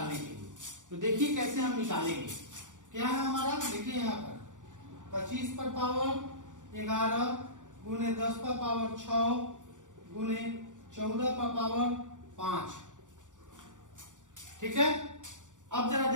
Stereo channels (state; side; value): late; left; 0.87 ms